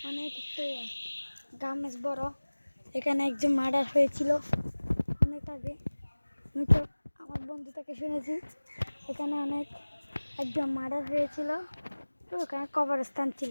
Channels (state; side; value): inverted; both; correlation -1.00